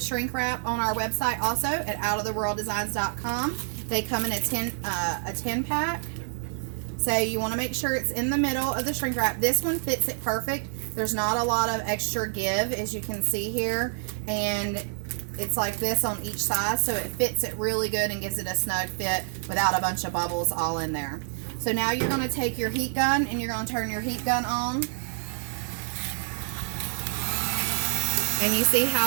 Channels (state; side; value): silent; left; 57 dB below the other